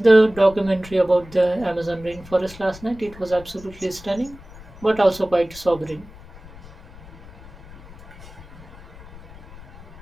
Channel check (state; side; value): noise; left; rumble, 18 dB below the sound